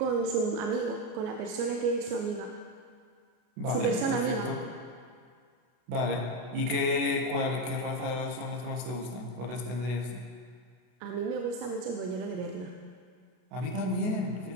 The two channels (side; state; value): left; late; 32 ms